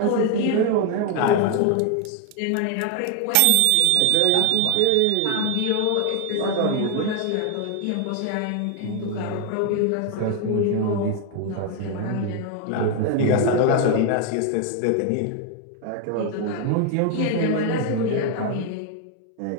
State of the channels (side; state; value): both; different; correlation 0.00